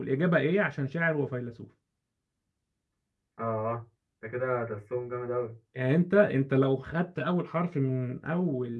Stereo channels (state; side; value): identical; both; correlation 1.00